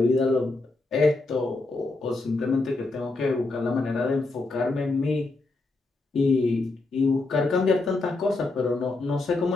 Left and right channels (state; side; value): quieter; right; 3.3 dB